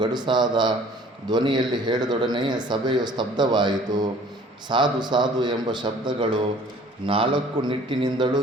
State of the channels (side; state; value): both; normal; correlation 0.52